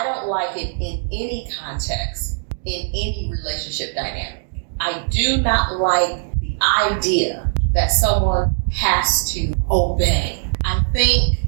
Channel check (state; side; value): silent; left; digital silence